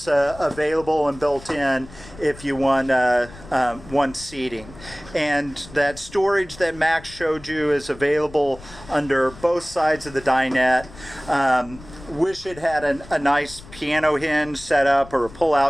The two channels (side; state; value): left; noise; rumble, 18 dB below the sound